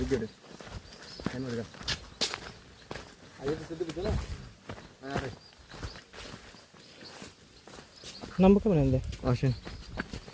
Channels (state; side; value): identical; both; correlation 1.00